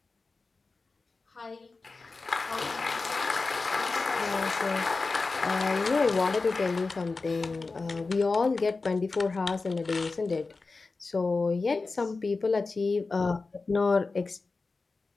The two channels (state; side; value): quieter; right; 3.9 dB